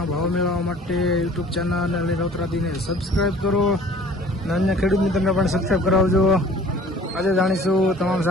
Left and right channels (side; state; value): both; normal; correlation 0.49